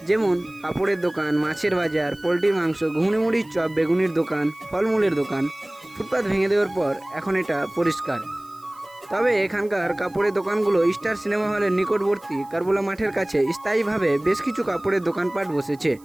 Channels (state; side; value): noise; right; hiss, 28 dB below the sound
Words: যেমন কাপড়ের দোকান, মাছের বাজার, পোলট্রির মাংস, ঘুগনি মুড়ির চপ, বেগুনির দোকান, ফলমূলের দোকান। ফুটপাত ভেঙে দেওয়ার পর এখন এটা পরিষ্কার। তবে এখানকার কাপড়ের দোকানগুলো স্টার সিনেমা হলের নিকটবর্তী কারবোলা মাঠের কাছে স্থায়ীভাবে বেশ কিছু কাপড়ের দোকানপাট বসেছে।